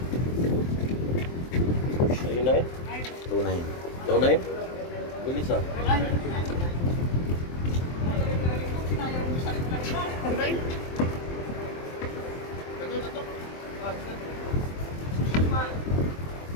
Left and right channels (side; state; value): right; late; 23 ms